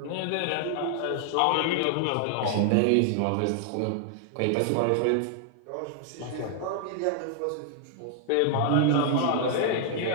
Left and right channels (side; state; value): both; different; correlation 0.00